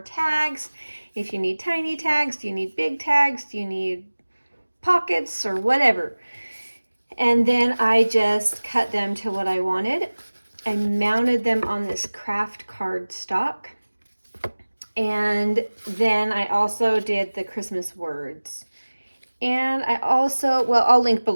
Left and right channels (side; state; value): both; inverted; correlation -1.00